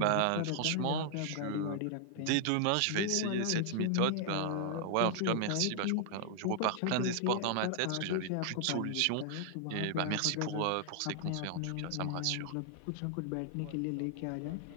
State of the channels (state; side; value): different; both; correlation 0.00